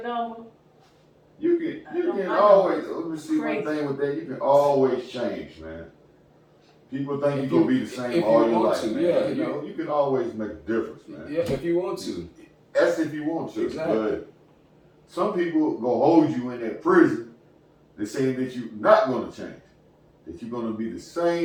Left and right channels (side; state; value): both; identical; correlation 1.00